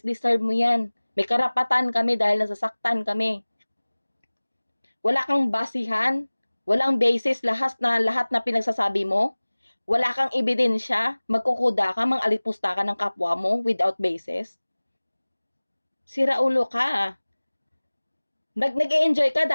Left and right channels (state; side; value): inverted; both; correlation -1.00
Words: deserve mo yan. May karapatan kami dahil nasasaktan kami. Wala kang basihan, walang basis lahat na pinagsasabi mo. Wala kang ebidensya, magkukuda ka, mang-alipusta ka ng kapwa mo without basis. Sira ulo ka. Nag-e-enjoy ka